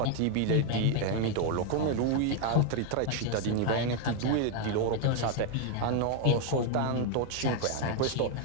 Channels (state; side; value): different; both; correlation 0.01